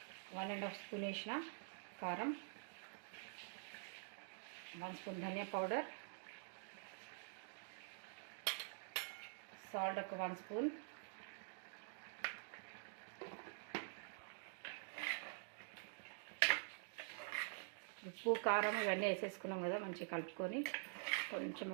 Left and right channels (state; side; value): silent; left; digital silence